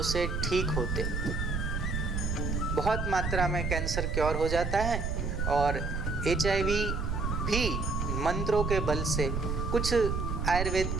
से ठीक होते। बहुत मात्रा में कैंसर क्योर हो जाता है और HIV भी मंत्रों के बल से, कुछ आयुर्वेद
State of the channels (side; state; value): right; noise; rumble, 1 dB below the sound